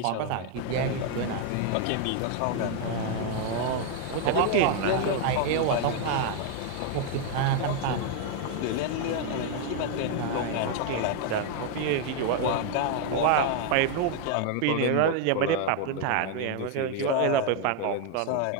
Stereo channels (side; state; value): both; different; correlation 0.00